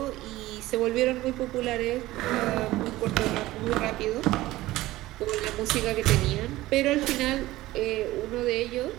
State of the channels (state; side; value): quieter; left; 17.2 dB